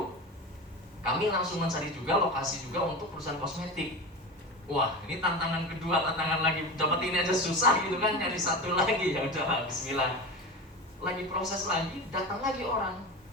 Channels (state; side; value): normal; both; correlation 0.27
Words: kami langsung mencari juga lokasi juga untuk perusahaan kosmetik. Wah, ini tantangan kedua, tantangan lagi, dapat ini aja susah gitu kan, nyari satu lagi. Ya udah, bismillah. Lagi proses lagi, datang lagi orang.